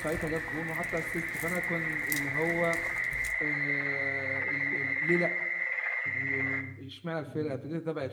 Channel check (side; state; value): both; identical; correlation 1.00